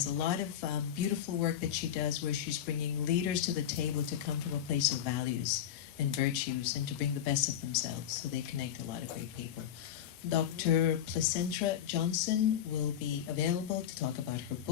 a lot of beautiful work that she does where she's bringing leaders to the table to come from a place of values and virtues and to bring the best of themselves. So they connect a lot of great people. Dr. Placentra Johnson will be available to talk about her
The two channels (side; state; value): right; quieter; 9.9 dB